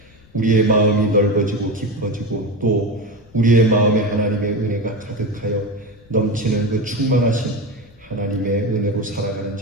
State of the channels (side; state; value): left; noise; rumble, 27 dB below the sound